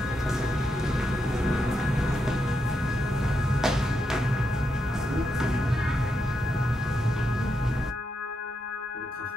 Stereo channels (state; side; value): normal; both; correlation 0.83